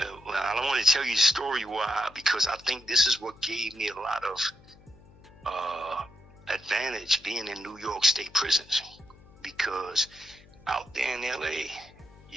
don't want to tell you the story why, because I think this is what gave me a lot of advantage being in New York State prisons, because out there in LA,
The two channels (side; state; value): left; noise; hum, 24 dB below the sound